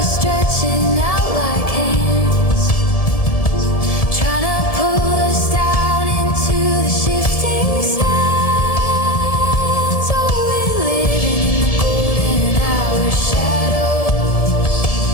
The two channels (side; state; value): right; late; 1.7 ms